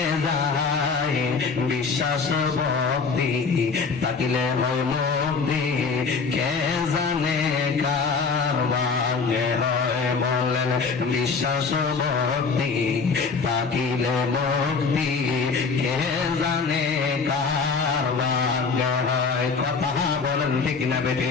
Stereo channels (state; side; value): quieter; right; 5.0 dB